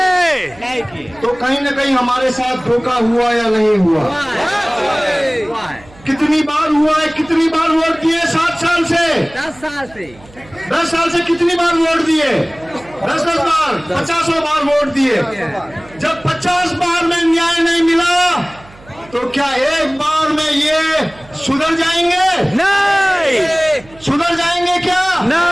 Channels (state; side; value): noise; right; hum, 23 dB below the sound